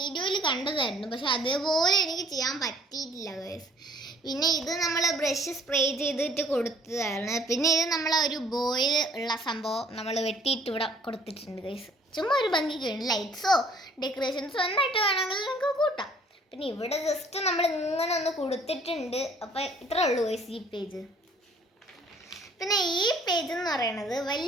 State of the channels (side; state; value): both; normal; correlation 0.58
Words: കണ്ടതായിരുന്നു, പക്ഷെ അതേപോലെ എനിക്ക് ചെയ്യാൻ പറ്റിയിട്ടില്ല ഗൈസ്. പിന്നെ ഇത് നമ്മൾ ബ്രഷ് സ്പ്രേ ചെയ്തിട്ട് കൊടുത്തതാണ്. പിന്നെ ഇത് നമ്മൾ ഒരു ബോയിൽ ഉള്ള സംഭവം നമ്മൾ വെട്ടിയിട്ട് ഇവിടെ കൊടുത്തിട്ടുണ്ട് ഗൈസ്. ചുമ്മാ ഒരു ഭംഗിക്ക് ലൈറ്റ്സോ ഡെക്കറേഷൻസോ എന്നായിട്ട് വേണമെങ്കിൽ നമുക്ക് കൂട്ടാം. പിന്നെ ഇവിടെ ജസ്റ്റ് നമ്മൾ ഇങ്ങനെ ഒന്ന് കൊടുത്തിട്ടുണ്ട്. അപ്പോൾ ഇത്രേ ഉള്ളൂ ഗൈസ് ഈ പേജ്. പിന്നെ ഈ പേജ് എന്ന് പറയുന്നത്